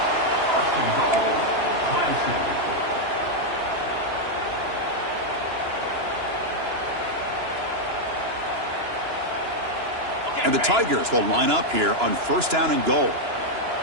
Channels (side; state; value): left; late; 2.9 ms